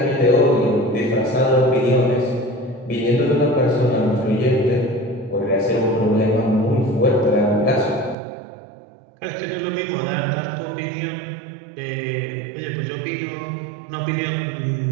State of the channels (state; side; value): drops out; left; at 8.2 s